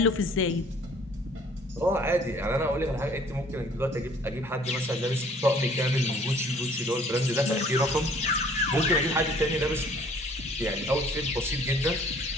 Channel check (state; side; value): normal; both; correlation 0.56